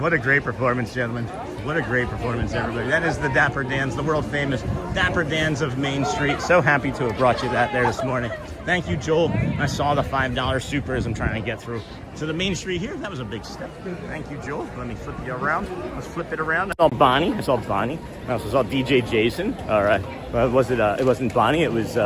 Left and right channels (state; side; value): identical; both; correlation 1.00